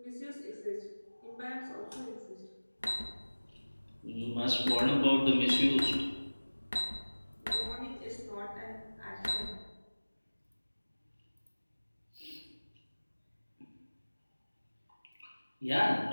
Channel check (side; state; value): both; inverted; correlation -1.00